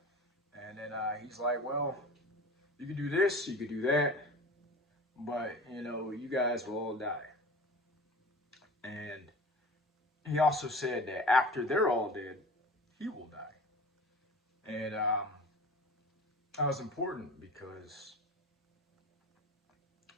And then he's like, "Well, you could do this, you could do that, but you guys will all die." And he also said that after they're all dead, he will die. And that was important because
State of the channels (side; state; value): both; normal; correlation 0.38